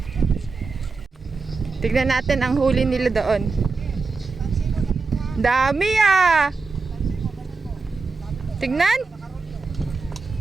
Tignan natin ang huli nila doon. Dami ah! Tignan!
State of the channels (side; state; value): left; quieter; 4.3 dB